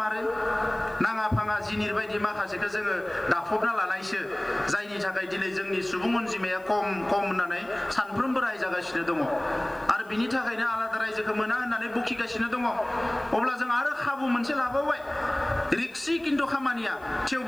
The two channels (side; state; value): left; noise; hiss, 29 dB below the sound